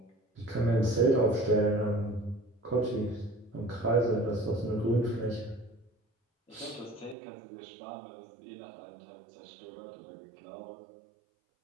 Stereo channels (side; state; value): left; drops out; at 7.2 s